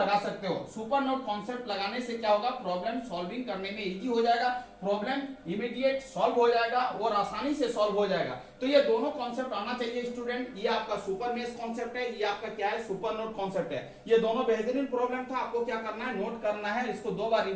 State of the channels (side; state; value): both; identical; correlation 1.00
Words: सकते हो। सुपर नोड कॉन्सेप्ट लगाने से क्या होगा, प्रॉब्लम सॉल्विंग करने में इजी हो जाएगा, प्रॉब्लम इमीडिएट सॉल्व हो जाएगा और आसानी से सॉल्व हो जाएगा। तो ये दोनों कॉन्सेप्ट आना चाहिए स्टूडेंट। ये आपका सुपर मेश कॉन्सेप्ट है, ये आपका क्या है, सुपर नोड कॉन्सेप्ट है। ये दोनों बेहतरीन प्रॉब्लम था। आपको क्या करना है, नोट करना है, इसको 2 बार